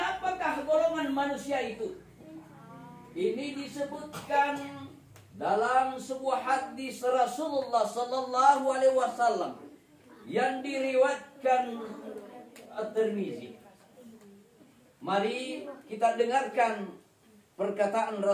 golongan manusia itu? Ini disebutkan dalam sebuah hadis Rasulullah sallallahu alaihi wasallam yang diriwayatkan At-Tirmizi. Mari kita dengarkan perkataan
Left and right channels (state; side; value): identical; both; correlation 1.00